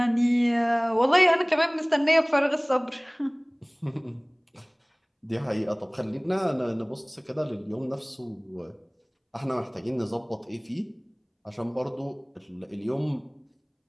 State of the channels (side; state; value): both; identical; correlation 1.00